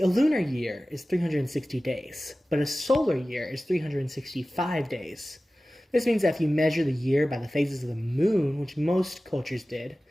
lunar year is 360 days, but a solar year is 365 days. This means that if you measure the year by the phases of the moon, which most cultures did,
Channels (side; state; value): both; normal; correlation 0.96